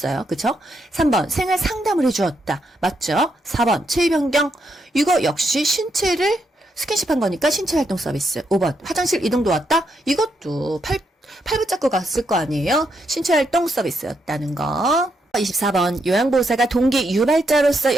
그쵸? 3번 생활 상담을 해주었다. 맞죠? 4번 체위 변경 이거 역시 신체를 스킨십한 거니까 신체활동 서비스. 5번 화장실 이동도 왔다? 이것도 팔 붙잡고 갔을 거 아니에요? 신체활동 서비스였다는 거. 24번 요양보호사가 동기 유발자로서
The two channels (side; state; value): both; normal; correlation 0.79